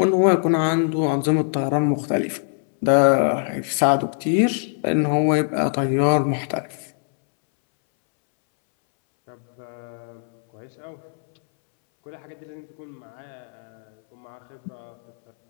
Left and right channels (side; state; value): right; silent; 64 dB below the other